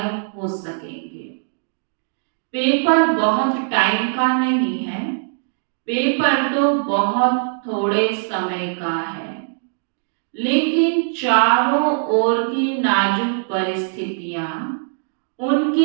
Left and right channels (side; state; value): left; silent; digital silence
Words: हो सकेंगे। पेपर बहुत टाइम का नहीं है, पेपर तो बहुत थोड़े समय का है, लेकिन चारों ओर की नाजुक परिस्थितियां,